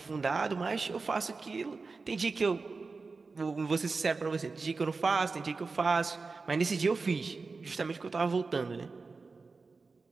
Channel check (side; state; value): left; quieter; 4.2 dB